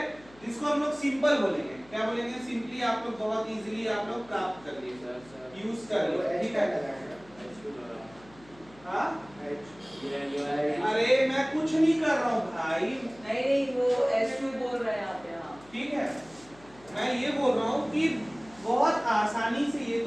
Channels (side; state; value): left; noise; hum, 25 dB below the sound